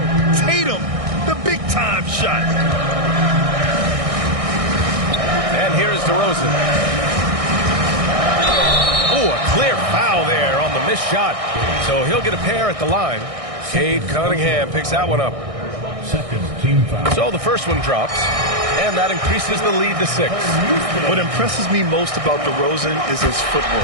Tatum, the big-time shot. And here's DeRozan. Oh, a clear foul there on the missed shot. So he'll get a pair at the line. Cade Cunningham picks that one up. Second team foul. So the first one drops, and that increases the lead to 6. What impresses me most about DeRozan is his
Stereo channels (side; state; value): left; late; 1.6 ms